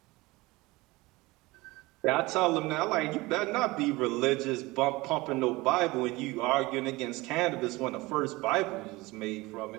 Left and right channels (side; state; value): left; quieter; 21.6 dB